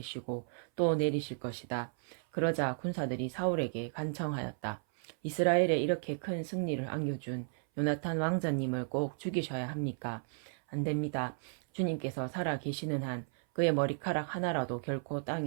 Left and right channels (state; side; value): silent; left; 55 dB below the other